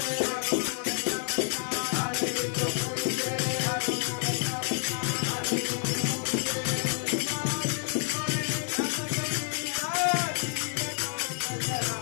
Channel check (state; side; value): silent; right; 59 dB below the other